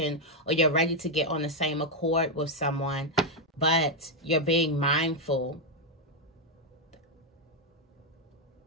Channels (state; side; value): normal; both; correlation 0.02